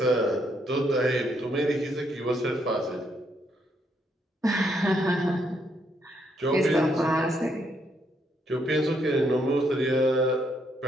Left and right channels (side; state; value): both; normal; correlation 0.74